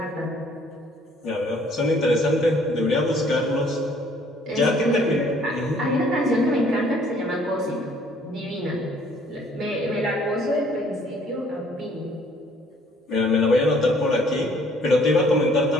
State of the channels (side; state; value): both; normal; correlation 0.60